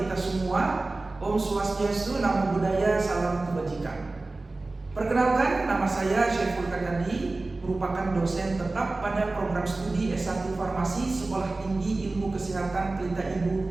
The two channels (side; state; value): left; quieter; 3.2 dB